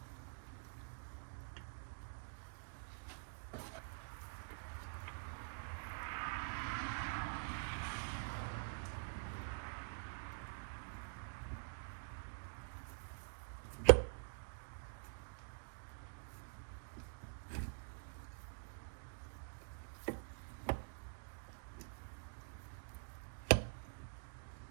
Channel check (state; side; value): silent; left; digital silence